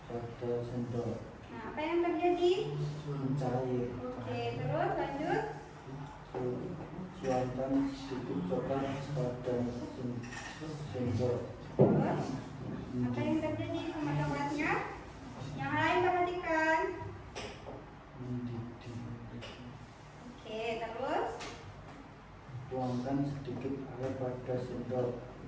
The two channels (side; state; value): both; identical; correlation 1.00